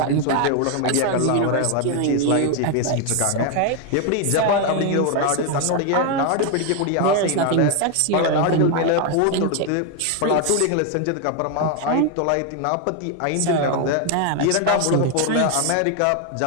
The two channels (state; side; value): different; both; correlation 0.01